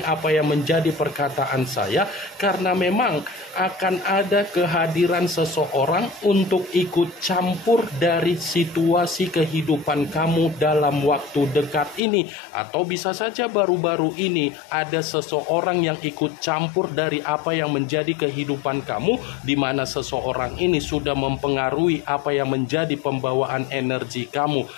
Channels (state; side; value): drops out; right; at 12.0 s